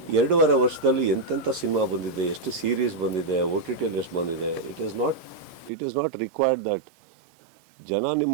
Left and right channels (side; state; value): left; drops out; at 5.7 s